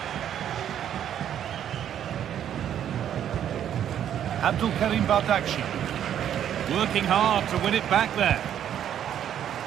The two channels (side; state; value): left; quieter; 10.0 dB